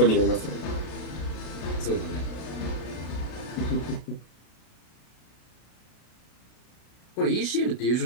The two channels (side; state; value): right; late; 33 ms